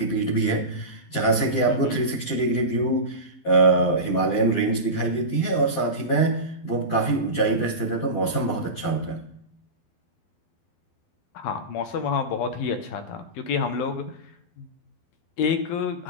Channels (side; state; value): right; late; 12 ms